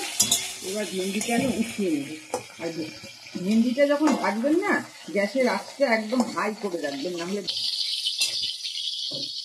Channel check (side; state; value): both; identical; correlation 1.00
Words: এবার ভেন্ডিটা আমি উঠিয়ে নেব। আর ভেন্ডিটা যখন ভাজবেন না, গ্যাসের আঁচটা একদম হাই করে রাখবেন, নাহলে।